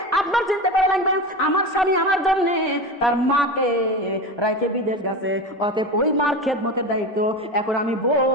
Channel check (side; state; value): both; normal; correlation 0.25